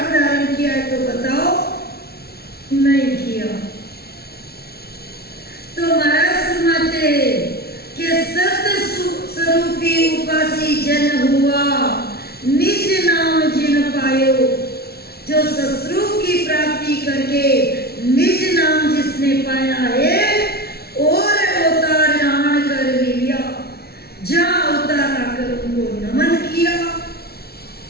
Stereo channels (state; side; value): late; right; 0.45 ms